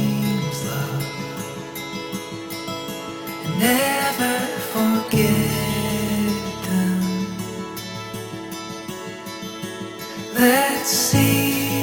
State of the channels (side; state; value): both; identical; correlation 1.00